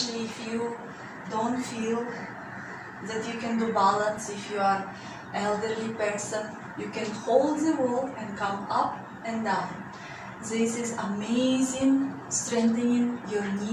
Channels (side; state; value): both; identical; correlation 1.00